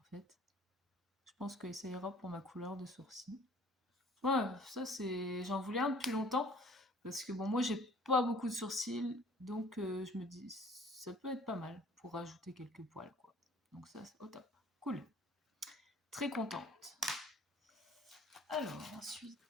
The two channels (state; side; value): normal; both; correlation 0.53